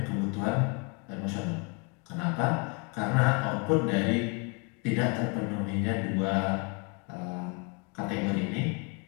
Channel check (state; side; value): quieter; right; 32.8 dB